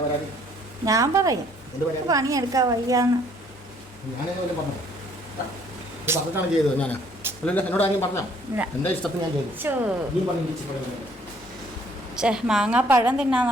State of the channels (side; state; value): both; normal; correlation 0.62